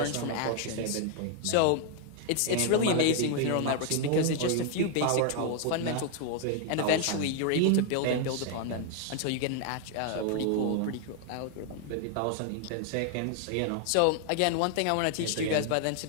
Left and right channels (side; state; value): both; different; correlation 0.00